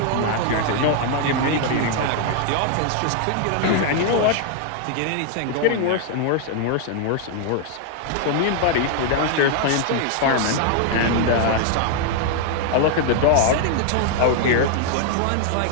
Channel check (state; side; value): different; both; correlation 0.00